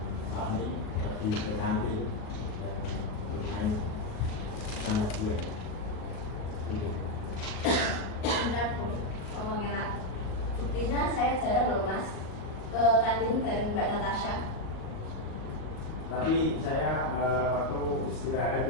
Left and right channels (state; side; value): late; right; 37 ms